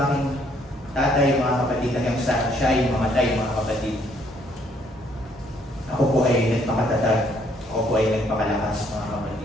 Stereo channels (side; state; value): both; normal; correlation 0.67